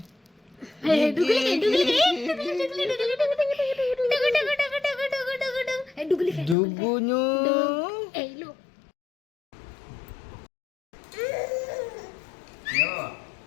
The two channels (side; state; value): right; drops out; at 6.6 s